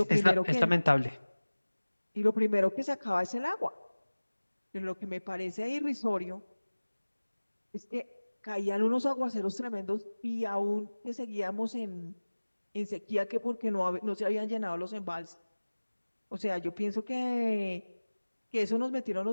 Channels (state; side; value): inverted; both; correlation -1.00